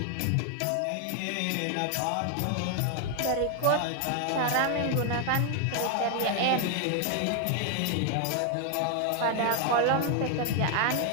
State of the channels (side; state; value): both; different; correlation 0.00